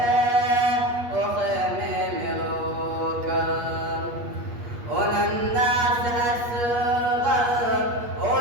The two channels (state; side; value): late; left; 8.4 ms